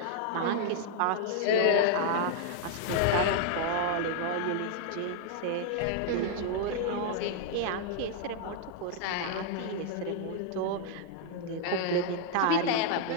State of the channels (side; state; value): both; different; correlation 0.00